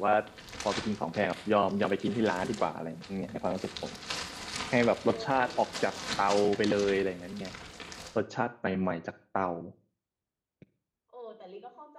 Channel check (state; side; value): identical; both; correlation 1.00